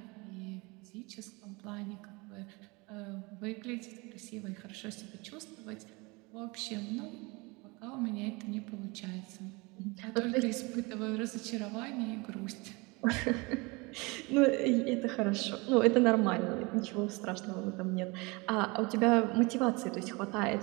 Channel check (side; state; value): left; quieter; 26.3 dB